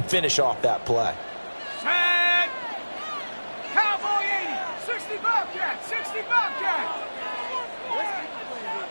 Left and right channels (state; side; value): inverted; both; correlation -1.00